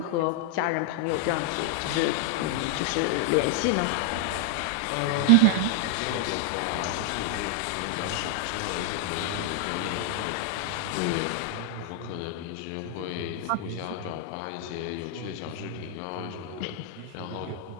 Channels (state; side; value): different; both; correlation 0.00